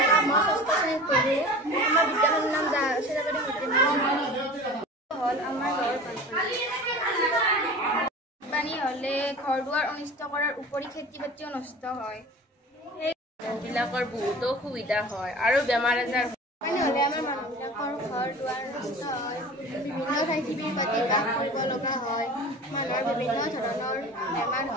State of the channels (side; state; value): both; normal; correlation 0.38